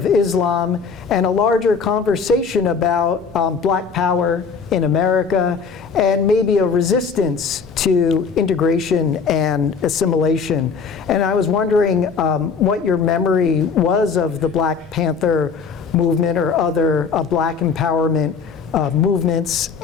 Islam, and a larger conversation about Black power in America, and maybe a resistance to integration and assimilation. And I was wondering what your memory was of the Black Panther movement or other Black empowerment movements,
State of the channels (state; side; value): quieter; right; 5.5 dB